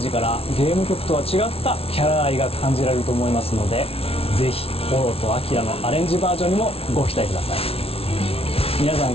からゲーム曲とは違ったキャラ愛が感じられると思いますので、ぜひオロとアキラのアレンジバージョンにもご期待ください。皆さん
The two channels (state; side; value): late; right; 0.28 ms